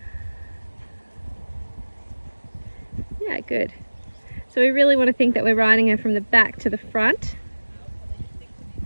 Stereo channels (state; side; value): inverted; both; correlation -1.00